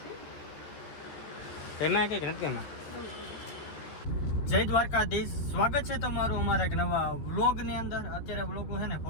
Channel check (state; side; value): late; right; 13 ms